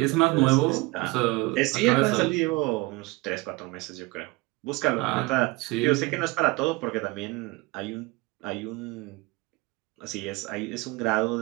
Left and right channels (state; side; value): quieter; left; 23.0 dB